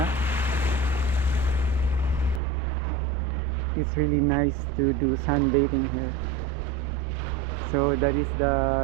It's really nice to do sunbathing here. So that is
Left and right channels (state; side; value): drops out; left; at 2.4 s